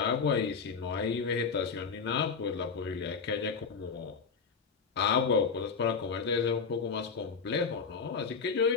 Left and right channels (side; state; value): right; quieter; 5.5 dB